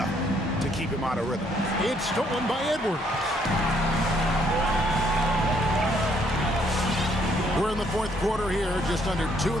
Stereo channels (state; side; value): normal; both; correlation 0.68